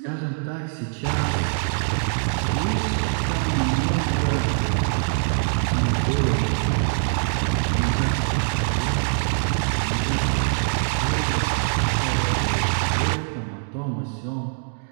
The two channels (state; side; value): silent; left; 63 dB below the other